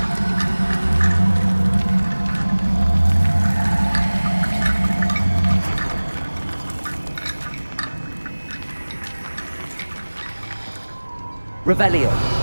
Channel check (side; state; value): both; inverted; correlation -1.00